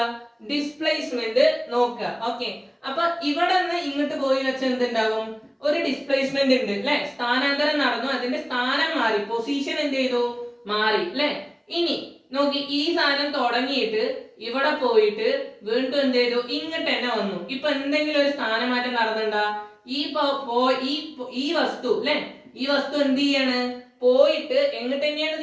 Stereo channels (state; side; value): identical; both; correlation 1.00